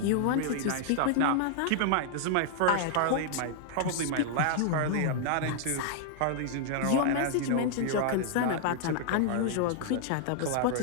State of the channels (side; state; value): both; different; correlation 0.00